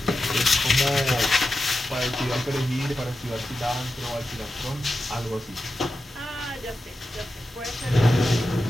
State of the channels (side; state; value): both; normal; correlation 0.91